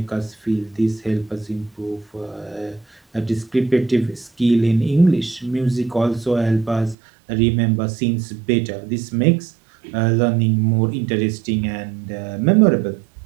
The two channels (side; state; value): left; drops out; at 7.0 s